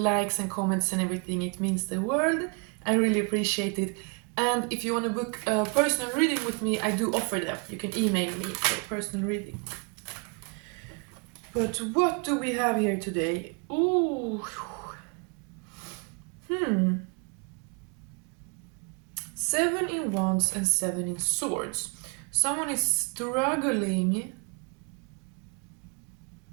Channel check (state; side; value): quieter; left; 35.6 dB